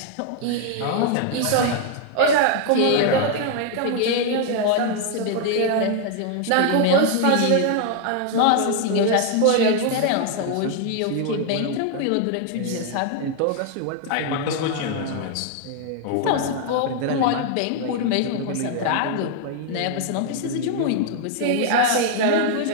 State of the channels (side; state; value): both; different; correlation 0.00